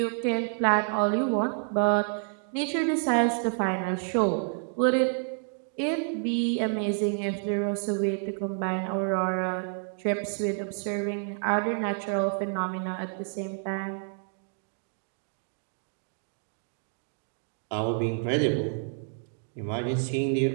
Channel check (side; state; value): left; silent; 59 dB below the other